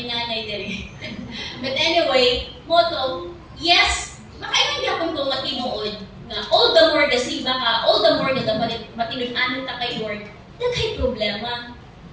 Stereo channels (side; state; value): both; identical; correlation 1.00